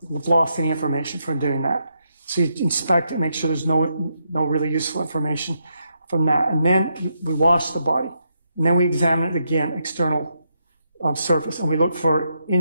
have lost any information from doing that. So you inspect it, make sure there's no really useful information from that. And then we wash the body. And then we examine it again, external surface. And we look for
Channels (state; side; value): inverted; both; correlation -0.80